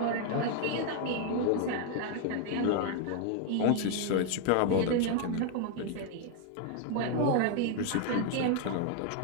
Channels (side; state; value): both; different; correlation 0.00